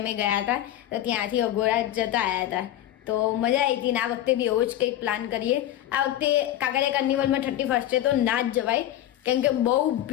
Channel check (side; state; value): right; quieter; 12.7 dB